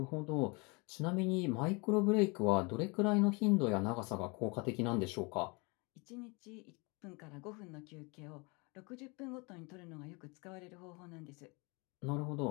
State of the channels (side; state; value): right; quieter; 28.9 dB